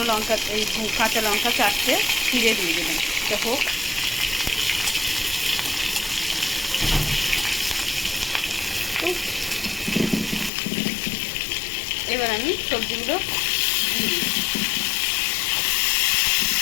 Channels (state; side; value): drops out; right; at 10.5 s